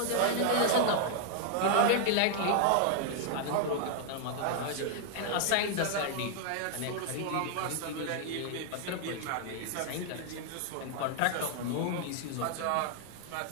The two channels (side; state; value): both; different; correlation 0.00